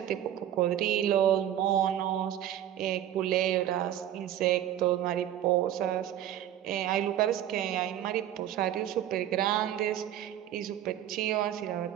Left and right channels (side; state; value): left; quieter; 11.5 dB